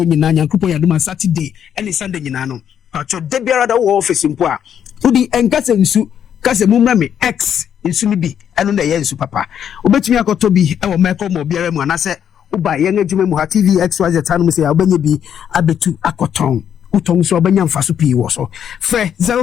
nyina nyankopon yadoma Saturday and Sunday nyina no pacho de biara da wo office mpo a udi enkase nsu kase mumra me x nsu ni bi eno na ye nsu papa obetumi akoto bi e wo meko mo biara mu anase uba ye ngejuma mu ha TV XYZ tanu mu se ya obanye bi abetu akoton Utong so abanya mfaso pi wo so fe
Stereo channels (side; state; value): right; quieter; 8.9 dB